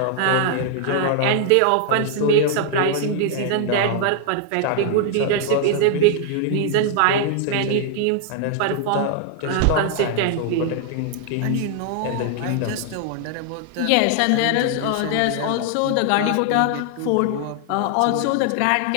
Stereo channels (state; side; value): different; both; correlation 0.00